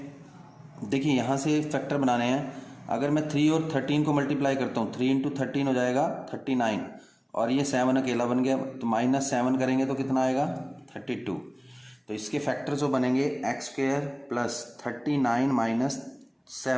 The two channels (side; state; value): both; identical; correlation 1.00